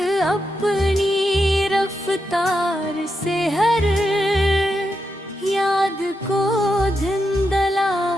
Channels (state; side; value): normal; both; correlation 0.85